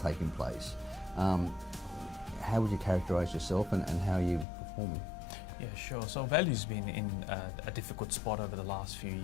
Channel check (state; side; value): drops out; right; at 4.5 s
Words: place. How would you characterize yourself and how are you performing? Yeah, sure. So value's been in a difficult spot over the last few